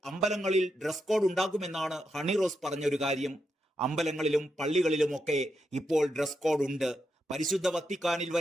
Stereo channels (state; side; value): normal; both; correlation 0.84